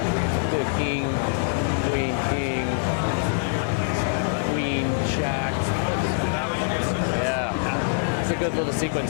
good king, queen, king. Jack. That was a good sequence. Yeah, it's a good little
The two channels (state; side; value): silent; right; digital silence